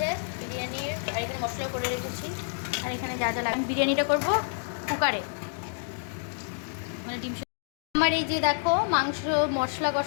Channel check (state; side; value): silent; right; digital silence